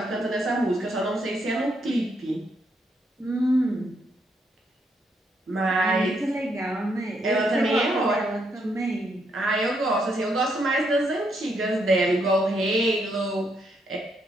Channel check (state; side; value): normal; both; correlation 0.76